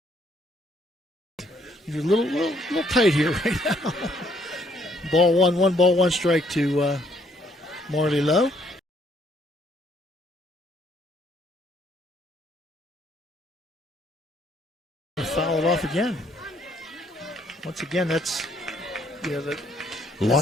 You're a little tight here right now. Ball 1 ball, 1 strike to Marley Lowe. Foul it off again. Once again, that's a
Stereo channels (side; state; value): both; normal; correlation 0.67